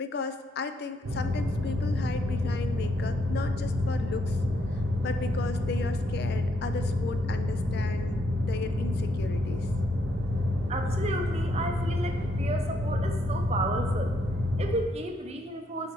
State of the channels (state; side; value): normal; both; correlation 0.75